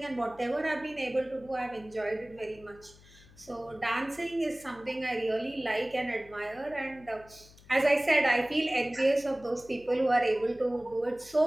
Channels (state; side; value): noise; left; hum, 24 dB below the sound